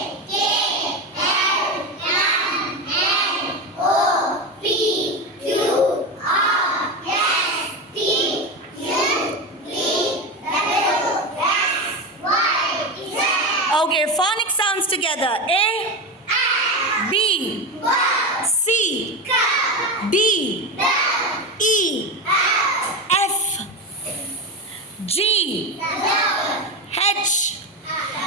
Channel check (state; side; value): normal; both; correlation 0.19